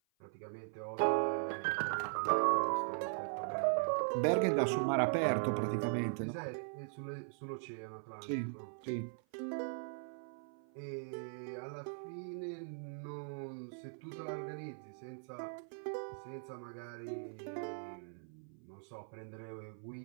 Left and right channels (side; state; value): left; silent; 51 dB below the other